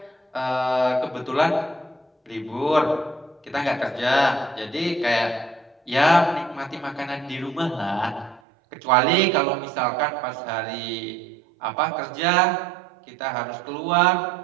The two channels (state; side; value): drops out; left; at 8.4 s